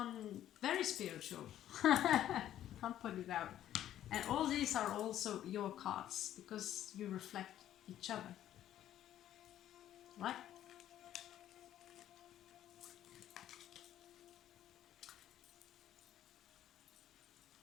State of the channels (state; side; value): quieter; right; 11.9 dB